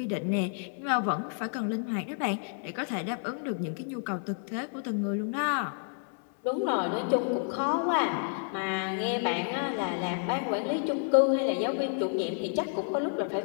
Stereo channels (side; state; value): right; silent; 58 dB below the other